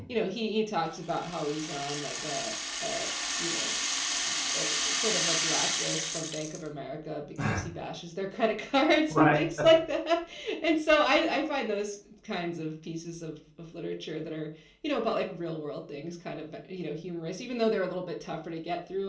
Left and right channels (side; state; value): both; identical; correlation 1.00